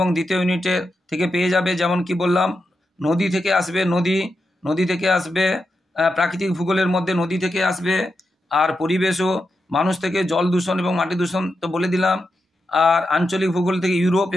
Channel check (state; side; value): normal; both; correlation 0.87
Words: দ্বিতীয় ইউনিটের থেকে পেয়ে যাবে। যেমন কি বললাম, নদী থেকে আসবে, প্রাকৃতিক ভূগোলের মধ্যে নদী থেকে আসবে, আর পরিবেশ ও মানুষ থেকে জল দূষণ এবং মাটি দূষণ তো বলে দিলাম। আর আঞ্চলিক ভূগোল থেকে ইউরোপ